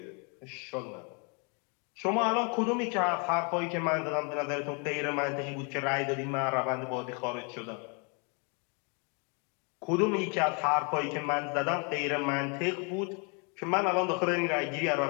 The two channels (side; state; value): right; quieter; 35.2 dB